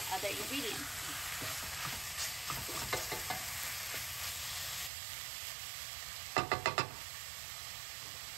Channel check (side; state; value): left; drops out; at 4.9 s